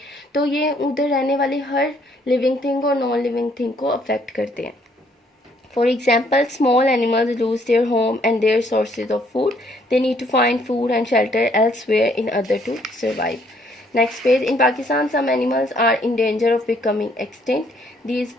तो ये उधर रहने वाली हर लिविंग थिंग और नॉन लिविंग थिंग को अफेक्ट करते हैं। For example, small animals lose their home and their sources of food. They need to find food and shelter elsewhere in order to survive. Next page. In Pakistan, some animals are in danger of becoming extinct. These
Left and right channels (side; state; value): both; normal; correlation 0.66